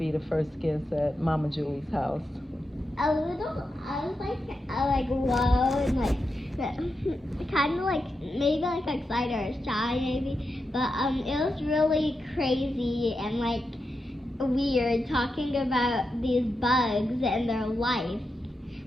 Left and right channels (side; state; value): both; normal; correlation 0.87